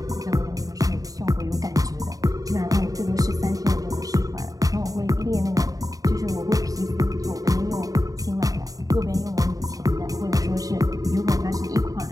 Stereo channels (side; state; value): left; late; 0.17 ms